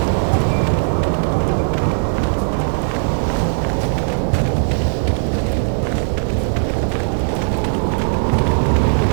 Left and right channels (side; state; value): left; silent; 60 dB below the other